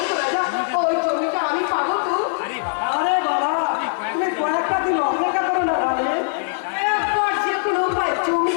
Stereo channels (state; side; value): silent; right; digital silence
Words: তো রাজা ওই জমিটা আমি পাবো তো আরে বাবা আরে বাবা তুমি কয়েকটা দিন অপেক্ষা করো না ভাই। একবার যে কোনো উপায়